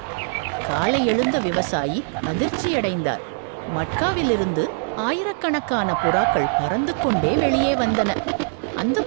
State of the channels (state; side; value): silent; left; digital silence